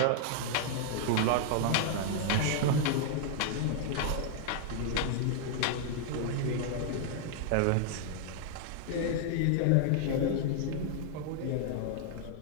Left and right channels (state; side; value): different; both; correlation 0.00